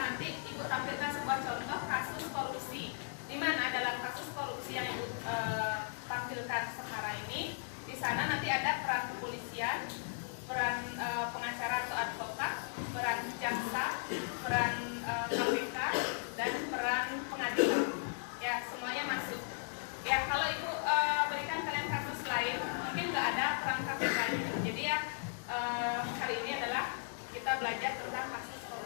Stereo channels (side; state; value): right; silent; digital silence